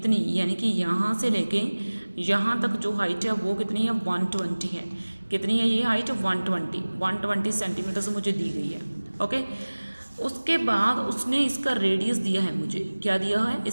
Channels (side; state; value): both; inverted; correlation -1.00